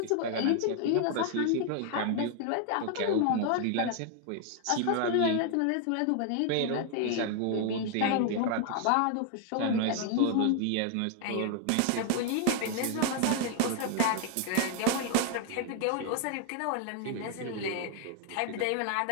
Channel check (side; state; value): both; different; correlation 0.00